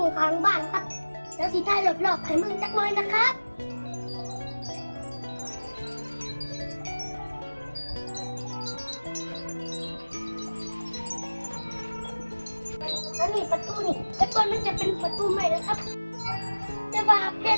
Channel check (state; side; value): inverted; both; correlation -1.00